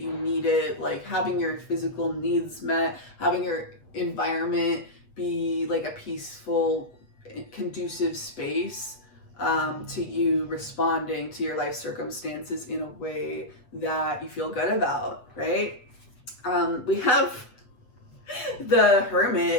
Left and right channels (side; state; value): right; late; 8.1 ms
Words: need it, like having your physical needs met, having your environment be like a peaceful, conducive space to you responding to your life circumstances in a way that you feel good about, right? We have the